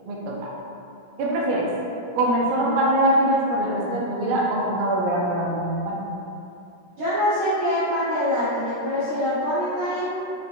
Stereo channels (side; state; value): left; late; 17 ms